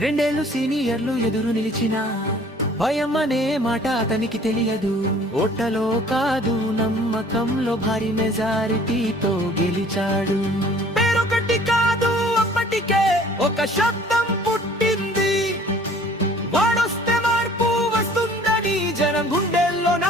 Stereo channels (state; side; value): normal; both; correlation 0.53